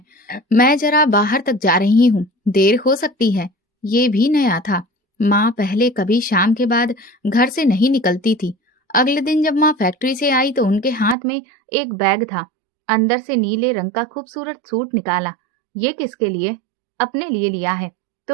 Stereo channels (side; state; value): left; drops out; at 11.2 s